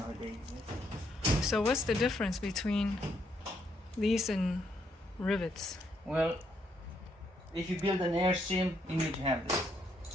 they existed. So what's the difference between these and rivets? Well, if you build an airstream, you need to have this.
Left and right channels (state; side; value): normal; both; correlation 0.75